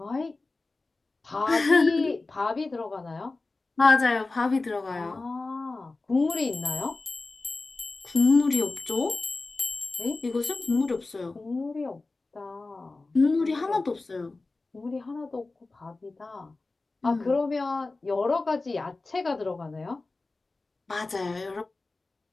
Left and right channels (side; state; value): right; quieter; 3.4 dB